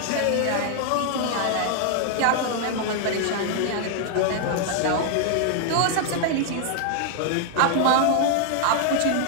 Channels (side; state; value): both; different; correlation 0.00